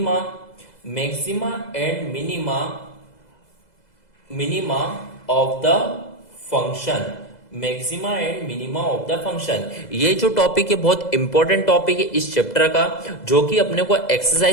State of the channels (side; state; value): right; late; 2.0 ms